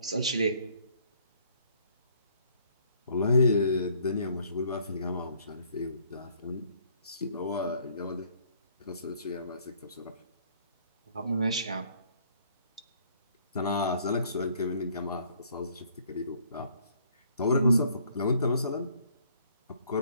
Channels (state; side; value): inverted; both; correlation -0.62